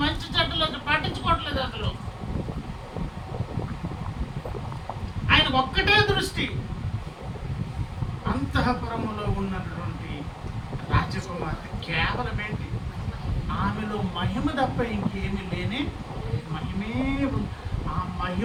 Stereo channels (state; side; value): identical; both; correlation 1.00